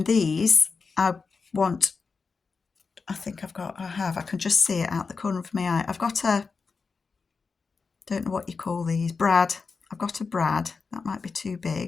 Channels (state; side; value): quieter; right; 4.8 dB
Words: these, I can just see it out the corner of my eye. I've got don't know what you call these, brad. I've got a brad. That might be too